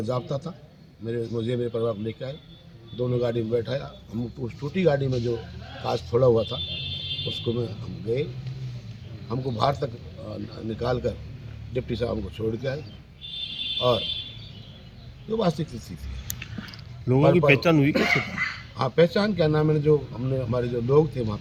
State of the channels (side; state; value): both; identical; correlation 1.00